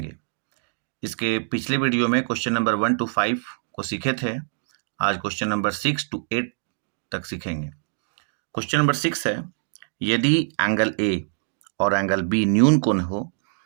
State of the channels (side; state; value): left; silent; digital silence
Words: इसके पिछले वीडियो में क्वेश्चन नंबर 1 to 5 को सीखे थे। आज क्वेश्चन नंबर 6 to 8 तक सीखेंगे। क्वेश्चन नंबर 6 है, यदि एंगल ए और एंगल बी न्यून कोण हो